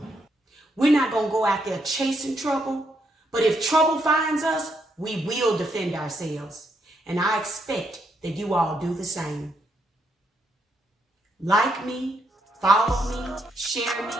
We're not gonna go out there chasing trouble, but if trouble finds us, we will defend ourselves. And I expect that you all do the same. Like me, follow me, share me,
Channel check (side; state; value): both; normal; correlation 0.77